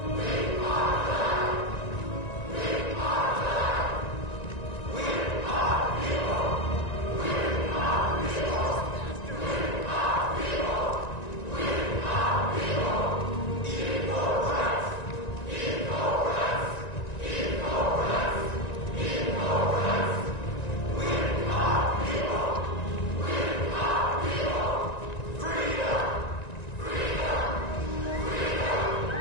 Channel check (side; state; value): right; late; 1.9 ms